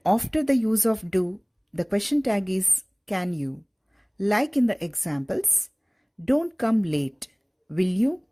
after the use of do, the question tag is can you. Like in the examples, don't come late, will you?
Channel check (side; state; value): both; identical; correlation 1.00